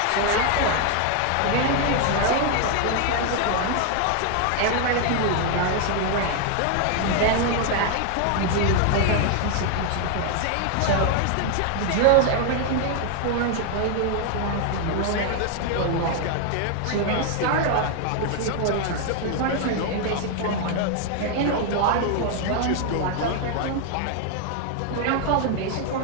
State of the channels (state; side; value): different; both; correlation 0.00